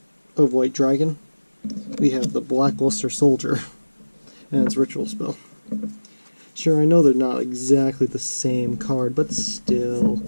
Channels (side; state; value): both; inverted; correlation -1.00